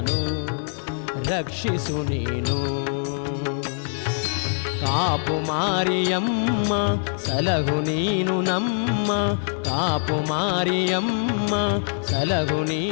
ರಕ್ಷಿಸು ನೀನು ಕಾಪು ಮಾರಿಯಮ್ಮ ಸಲಹು ನೀನು ನಮ್ಮ ಕಾಪು ಮಾರಿಯಮ್ಮ ಸಲಹು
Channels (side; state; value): right; silent; 63 dB below the other